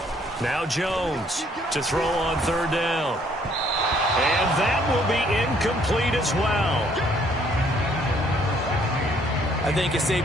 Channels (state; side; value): normal; both; correlation 0.64